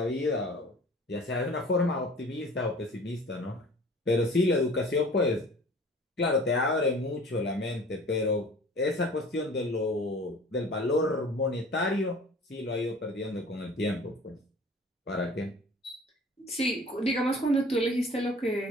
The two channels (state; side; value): normal; both; correlation 0.45